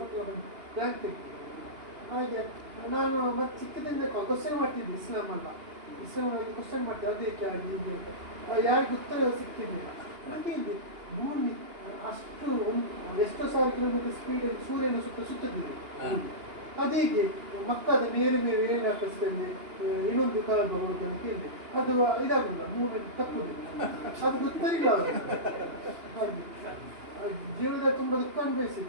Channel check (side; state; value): left; late; 2.8 ms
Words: ಪಕ್ಕಲ ಬಂದು ರ್ಯಾಂಕ್ ತೆಗ್ತಿದ್ದೆ. ಹಾಗೆ ನಾನು ಮತ್ತೆ ಚಿಕ್ಕದಿಂದ ಕ್ವಶನ್ ಮಾಡ್ತಿದ್ದೆ, ಇಸ್ಲಾಮಲ್ಲಿ ಕ್ವಶನ್ ಮಾಡ್ತಿದ್ದೆ, ಅದಕ್ಕೆ ಆಗಿ ಹೀಗೆ ಅಂತ. ಯಾರಿಗೂ ಉತ್ತರ ಸಿಗ್ತಿರ್ಲಿಲ್ಲ. ಹಾಗೆ ಇದೆ ಭೂಮಿ ಅಷ್ಟು ಎಷ್ಟೋ ಸಾವಿರ ಕಿಲೋಮೀಟರ್ ಸ್ಪೀಡಲ್ಲಿ ಸೂರ್ಯನ ಸುತ್ತದಿದೆ. ಅದೀಗೆ ಮಕ್ಕದ ಮೇಲೆ ಏನು ಹಾಕಿಸ್ತೇನೆ, ಇನ್ನೊಂದು ಕಾಲ ಬರುವುದು ಅಂತ ಹೇಳಿದೆ. ಅದು ಇದಾಗುದಿಲ್ಲ, ಮೂವ್ಮೆಂಟ್ ತಪ್ಪುದಿಲ್ಲ, ಅದು ಗೊತ್ತಿಲ್ಲ ಅವರು. ಹಾಗೆ ಜೀವನದಲ್ಲಿ ತುಂಬ ದುಃಖ ಅನುಭವಿಸಿದೆ.